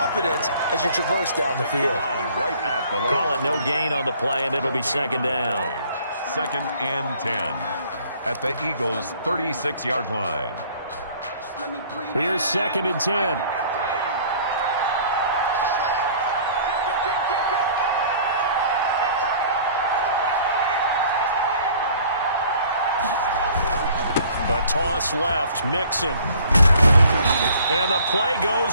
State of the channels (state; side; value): inverted; both; correlation -0.54